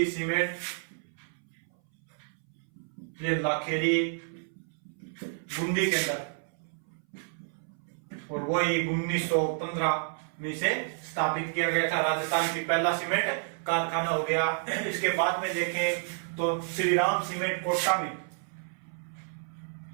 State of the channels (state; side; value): silent; left; 58 dB below the other